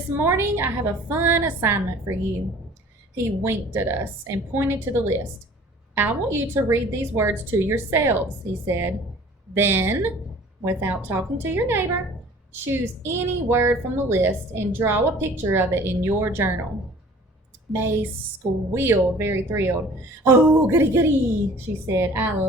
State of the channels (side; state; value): both; normal; correlation 0.49